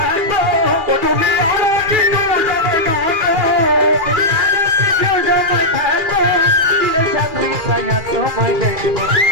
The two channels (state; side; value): late; left; 2.4 ms